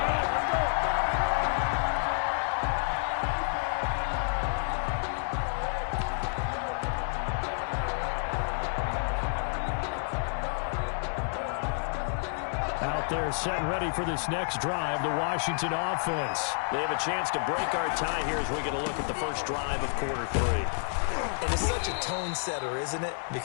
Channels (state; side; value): silent; right; 58 dB below the other